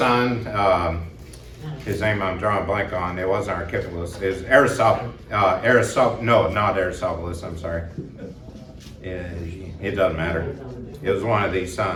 his name I'm drawing a blank on, it wasn't Archippus, it was not Aristobulus, I'm sorry. It doesn't matter. It was one of these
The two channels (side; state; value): both; identical; correlation 1.00